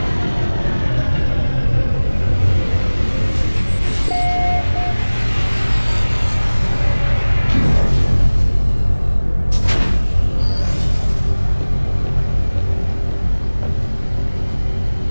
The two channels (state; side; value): inverted; both; correlation -1.00